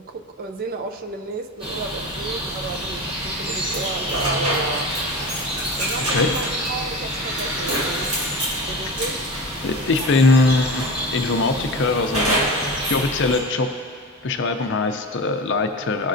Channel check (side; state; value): both; normal; correlation 0.28